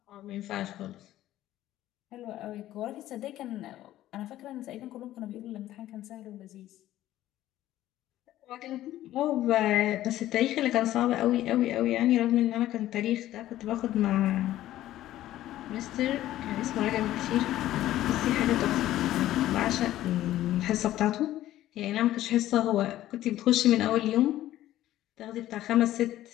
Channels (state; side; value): quieter; right; 14.0 dB